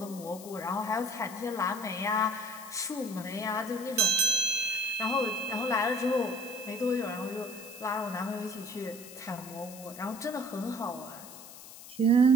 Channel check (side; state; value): left; noise; hiss, 15 dB below the sound